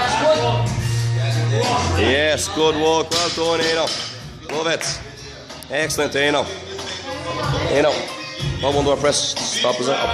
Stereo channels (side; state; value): both; identical; correlation 1.00